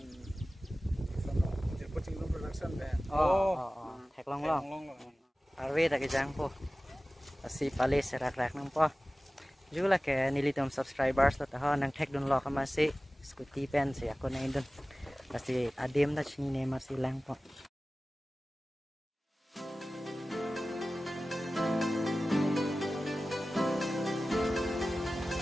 coaching production be thek long arve ta ke jang po asi pale se rak rak nang po jula ke nilitom subscribers ta ha nang thek don lo ka ma se scooty pen se ako na indon kasi adem na chini ne ma silang po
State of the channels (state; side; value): normal; both; correlation 0.97